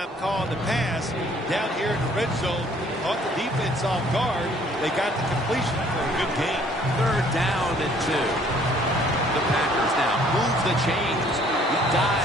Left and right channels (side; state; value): both; normal; correlation 0.59